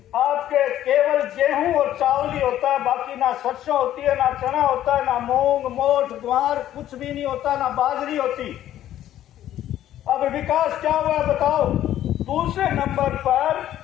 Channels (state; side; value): quieter; right; 12.3 dB